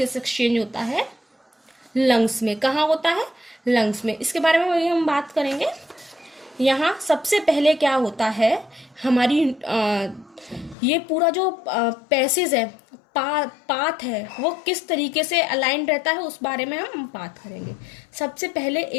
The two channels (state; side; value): drops out; right; at 10.8 s